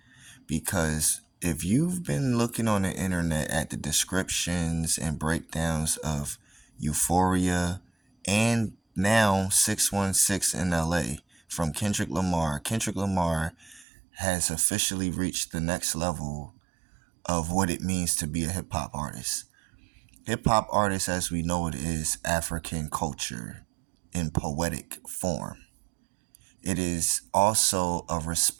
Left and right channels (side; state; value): left; drops out; at 13.9 s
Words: Because if you've been looking on the internet at the descriptions and breakdowns of Euphoria and now 616 in LA from Kendrick Lamar has officially reached the next level of what it means to be a hip hop artist. Hip hop artist, as we know it, is African culture in poetic form. It is also a